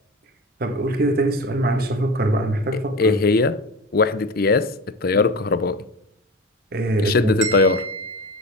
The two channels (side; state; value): both; normal; correlation 0.29